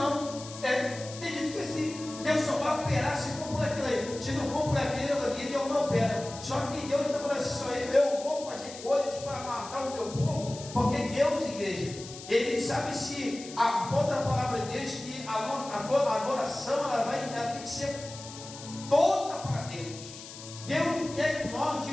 tem gente que é assim. Deus só vai operar se for por aquilo ali. Se não for por aquilo ali, Deus não opera. Só que Deus não fala assim, só eu vou fazer coisas para matar o meu povo, porque Deus, igreja, Ele sabe se a outra palavra de Deus que a adoração ela tem que ser toda para Deus. Deus não quer que nós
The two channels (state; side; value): noise; left; hiss, 14 dB below the sound